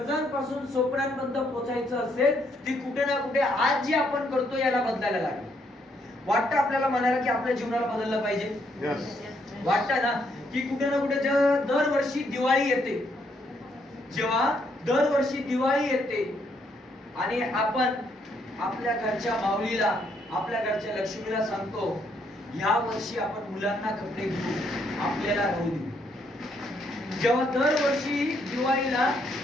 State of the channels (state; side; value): normal; both; correlation 0.73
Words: स्वप्नांपर्यंत पोहोचायचं असेल ती कुठे ना कुठे आज जे आपण करतो याला बदलायला लागेल. वाटतं आपल्याला म्हणायला की आपल्या जीवनाला बदललं पाहिजे. वाटतं ना की कुठे ना कुठे दरवर्षी दिवाळी येते, जेव्हा दरवर्षी दिवाळी येते आणि आपण आपल्या घरच्या माऊलीला आपल्या घरच्या लक्ष्मीला सांगतो ह्या वर्षी आपण मुलांना कपडे घेऊ, आपल्याला राहू देऊ. जेव्हा दरवर्षी दिवाळीला